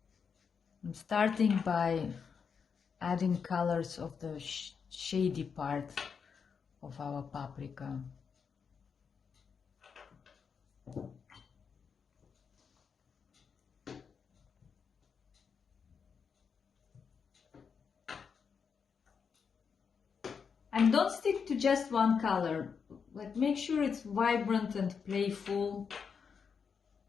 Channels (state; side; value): quieter; right; 6.2 dB